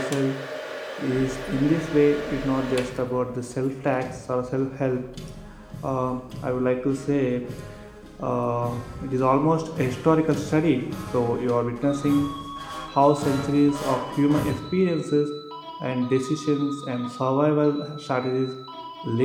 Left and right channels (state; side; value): identical; both; correlation 1.00